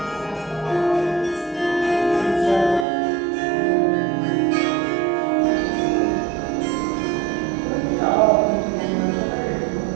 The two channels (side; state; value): left; drops out; at 2.9 s